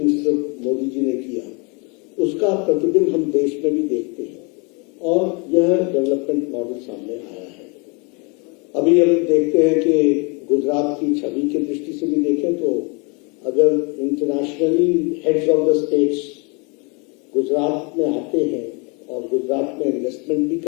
Modi ji ने किया, उसका प्रतिबिंब हम देश में भी देखते हैं और यह डेवलपमेंट मॉडल सामने आया है। अभी हम देखते हैं कि गुजरात की छवि की दृष्टि से भी देखें तो अगर internationally heads of the states Gujarat में आते हैं और गुजरात में इन्वेस्टमेंट भी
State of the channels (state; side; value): quieter; right; 32.1 dB